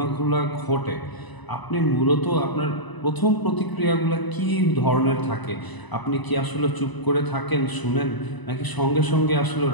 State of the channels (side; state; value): right; late; 1.0 ms